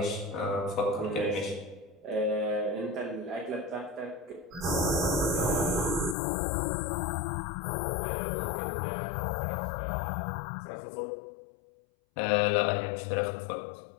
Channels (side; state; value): right; drops out; at 6.2 s